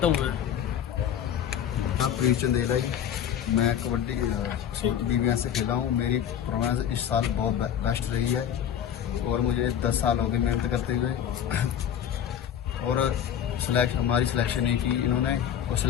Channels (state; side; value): quieter; right; 9.5 dB